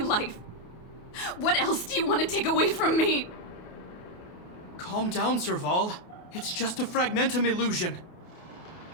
life. What else do you want to take away from me? Calm down, Serval. It's just a fragmentum illusion.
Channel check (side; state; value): right; late; 28 ms